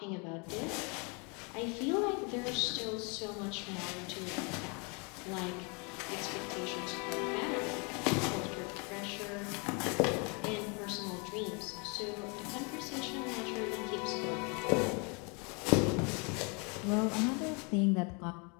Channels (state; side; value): quieter; right; 32.9 dB